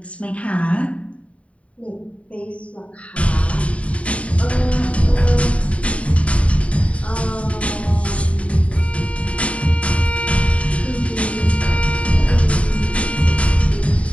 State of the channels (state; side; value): late; right; 0.065 ms